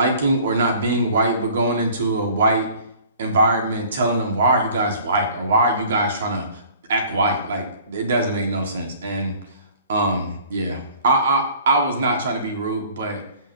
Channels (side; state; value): both; inverted; correlation -0.51